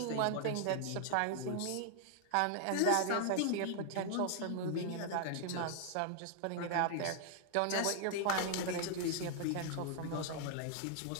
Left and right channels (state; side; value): different; both; correlation 0.00